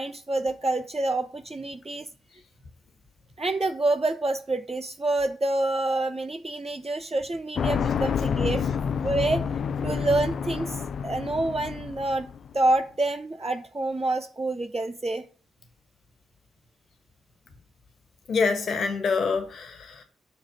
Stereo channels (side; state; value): both; normal; correlation 0.81